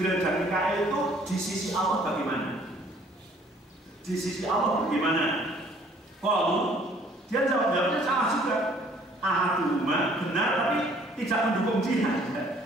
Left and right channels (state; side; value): normal; both; correlation 0.58